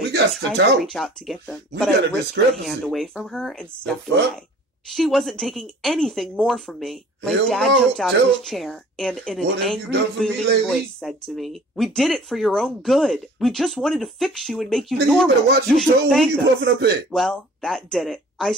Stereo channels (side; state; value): both; normal; correlation 0.48